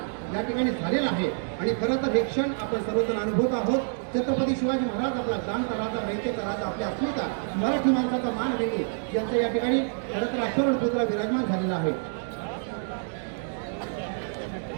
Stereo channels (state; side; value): silent; left; digital silence